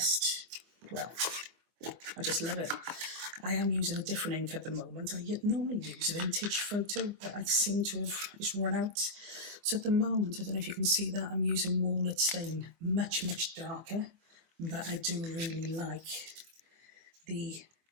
well, I just love it. I am using a different ink at the moment. I normally use Vintage Photo, but I seem to have just run out. So at the moment, I don't know if you can see that, I'm using Walnut Stain, much, much darker, but I do really like the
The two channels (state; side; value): late; left; 25 ms